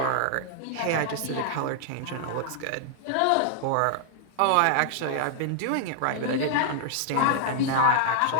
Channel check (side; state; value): both; different; correlation 0.00